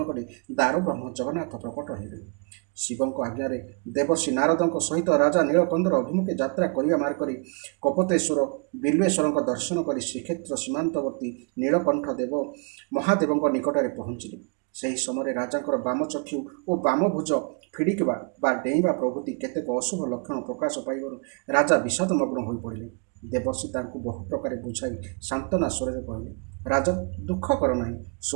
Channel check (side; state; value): left; quieter; 35.1 dB